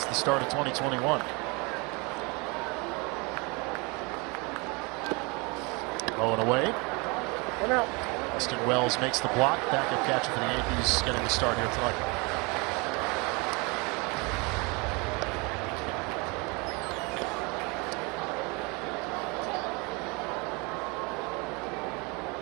the start of 2021. Oh, and away. Austin Wells makes the block. Backup catcher for the Yankees getting the start here tonight.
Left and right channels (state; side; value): quieter; left; 28.7 dB